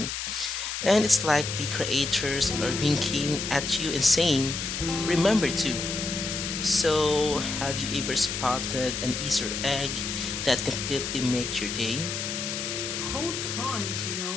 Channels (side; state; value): left; noise; hiss, 4 dB below the sound